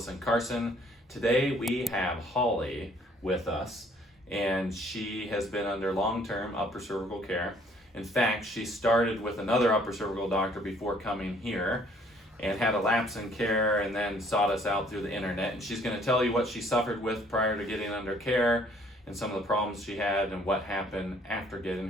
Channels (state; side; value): normal; both; correlation 0.60